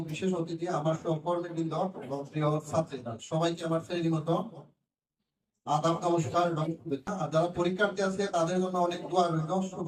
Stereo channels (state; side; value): identical; both; correlation 1.00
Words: বিশেষ অতিথি, আমার সহকর্মীবৃন্দ এবং প্রিয় ছাত্রীরা, সবাইকে আমার শ্রেণীমতো আদাব, নমস্কার এবং শুভেচ্ছা। আর যারা পরীক্ষার্থী আছে তাদের জন্য অনেক দোয়া রইল,